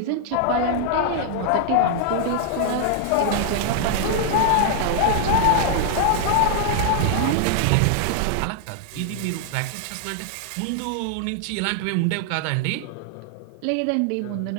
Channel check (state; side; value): different; both; correlation 0.00